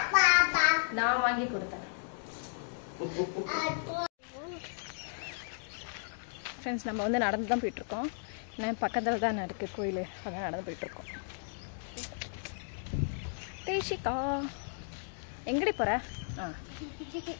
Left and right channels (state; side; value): silent; right; digital silence